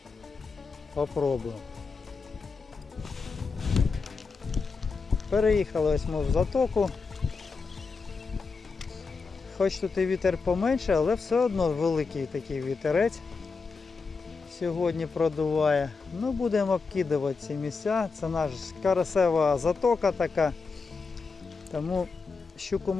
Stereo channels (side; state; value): right; quieter; 4.6 dB